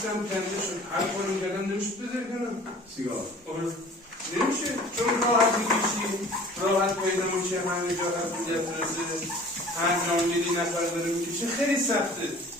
کنده شد هر کاری کردم نمیشد بذاری کنم سیگار نمیشه چون راحت میکشی راحت پیدا میشه همه جا قبولیت رسه هر جا میری نفر داره میکشه خیلی سخته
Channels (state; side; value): normal; both; correlation 0.46